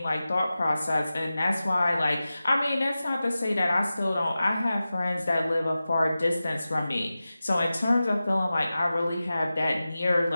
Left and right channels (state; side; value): inverted; both; correlation -0.95